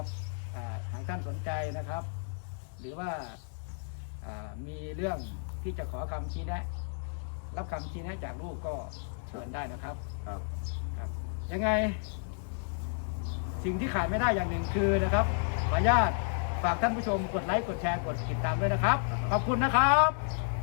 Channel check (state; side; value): silent; right; digital silence